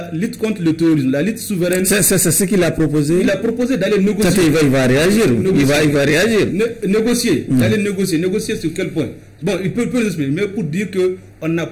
lutte contre le terrorisme, la lutte souveraine... C'est ce qu'il a proposé. Il a proposé d'aller négocier. Il va réagir. Il va réagir. Négocier. D'aller négocier. Négocier sur quel point? Bon, il peut l'expliquer, mais pour dire qu'on n'a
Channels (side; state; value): both; identical; correlation 1.00